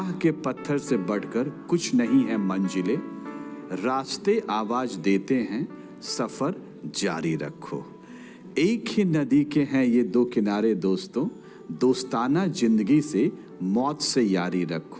के पत्थर से बढ़कर कुछ नहीं है मंजिलें, रास्ते आवाज देते हैं, सफर जारी रखो। एक ही नदी के हैं ये दो किनारे दोस्तों, दोस्ताना जिंदगी से मौत से यारी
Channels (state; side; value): identical; both; correlation 1.00